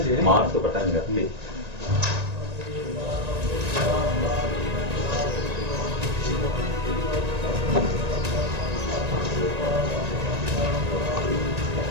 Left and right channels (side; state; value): left; late; 1.9 ms